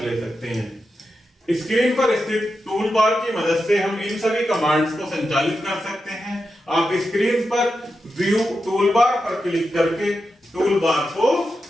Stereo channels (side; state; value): both; normal; correlation 0.89